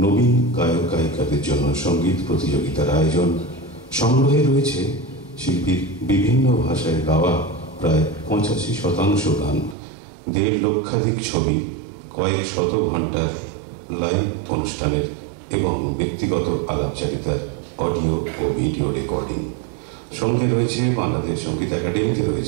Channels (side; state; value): left; drops out; at 9.8 s